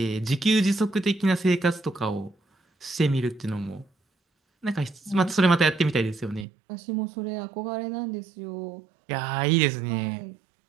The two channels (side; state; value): left; drops out; at 6.5 s